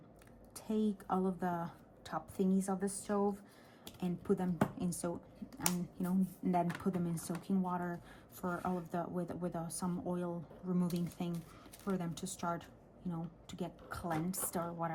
take all of the top thingies of the stove and put them in and then put them in soaking water for all of the with some oil removing thing for them to start, you know, to get cleansed or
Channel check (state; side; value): identical; both; correlation 1.00